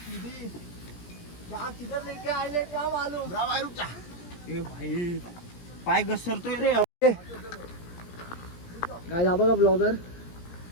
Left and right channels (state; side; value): late; right; 17 ms